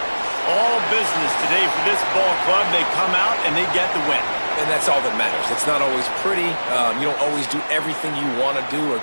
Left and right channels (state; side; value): inverted; both; correlation -1.00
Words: All business today for this ball club. They come out and they get the win. And that's all that matters. It's not always pretty. You don't always do everything you want to do or